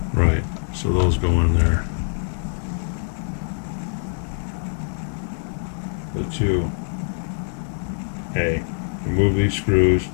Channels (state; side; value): silent; right; digital silence